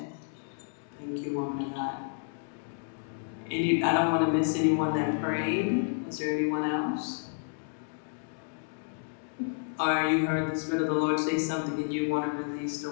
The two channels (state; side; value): silent; right; 57 dB below the other